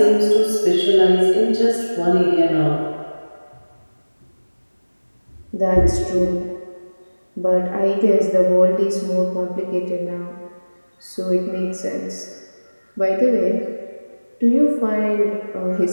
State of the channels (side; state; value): both; inverted; correlation -1.00